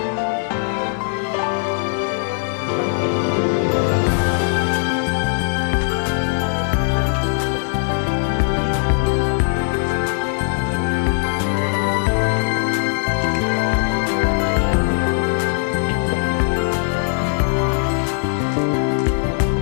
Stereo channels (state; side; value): silent; right; digital silence